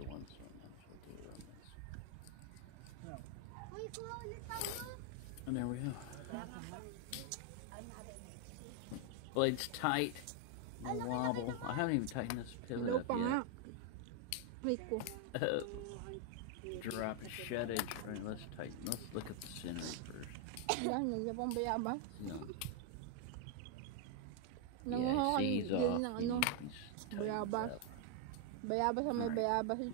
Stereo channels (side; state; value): both; different; correlation 0.01